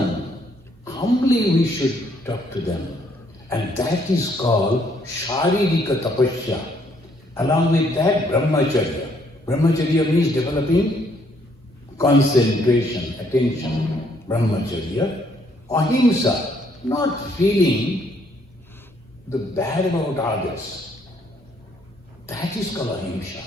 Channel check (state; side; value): normal; both; correlation 0.68